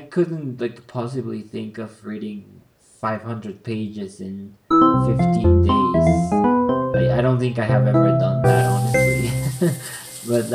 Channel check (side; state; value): both; identical; correlation 1.00